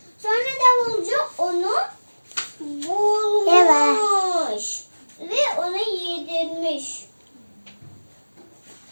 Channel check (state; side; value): inverted; both; correlation -1.00